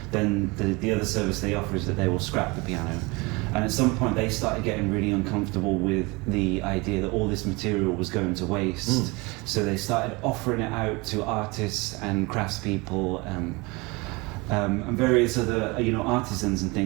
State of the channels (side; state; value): left; quieter; 25.7 dB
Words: then the other service they offer is that they will scrap the piano. And at some point they started getting really uncomfortable with the idea that all this material was going to waste. So they started offering it out to artists and craftspeople and various other artisans and